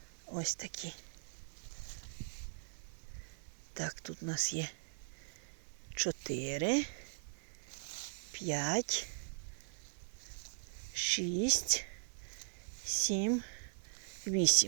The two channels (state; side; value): silent; left; digital silence